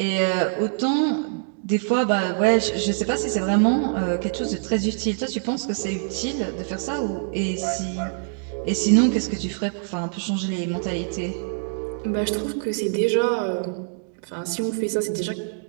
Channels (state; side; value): silent; left; digital silence